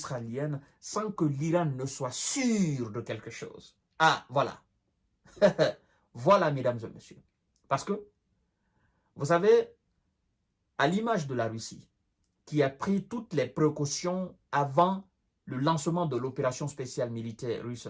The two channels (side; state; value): both; identical; correlation 1.00